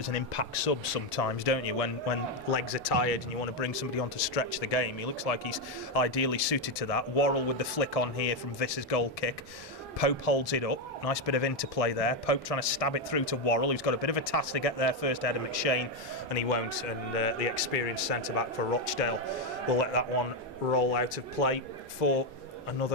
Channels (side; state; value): both; normal; correlation 0.06